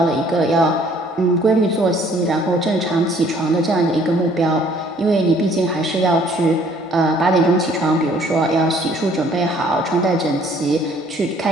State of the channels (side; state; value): both; normal; correlation 0.59